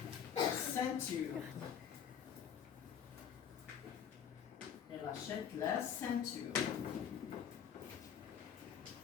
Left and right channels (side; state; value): right; quieter; 8.2 dB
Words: ceinture. Elle achète la ceinture.